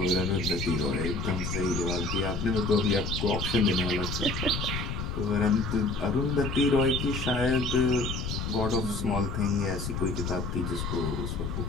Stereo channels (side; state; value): left; noise; rumble, 4 dB below the sound